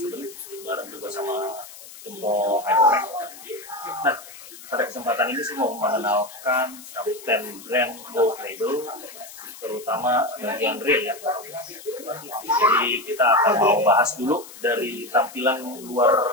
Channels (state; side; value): noise; left; hiss, 17 dB below the sound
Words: bareng juga sama Tempo Hyperpack. Nah, pada kesempatan ini saya mau mengenalkan Kapten Brand Gold Label, terutama bagian real ya. Jadi kita akan mau bahas dulu dari tampilan